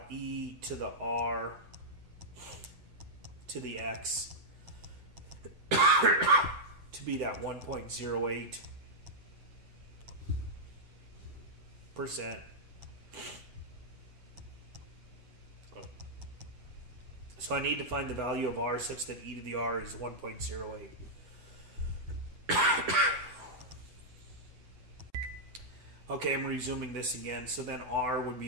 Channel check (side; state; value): left; late; 8.0 ms